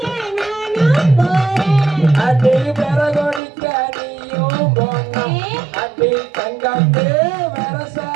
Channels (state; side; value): drops out; left; at 3.4 s